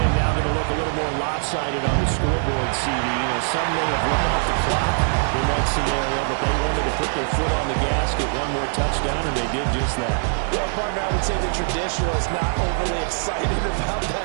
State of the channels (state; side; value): silent; left; 62 dB below the other